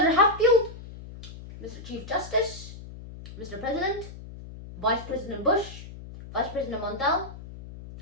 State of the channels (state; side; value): noise; left; hum, 14 dB below the sound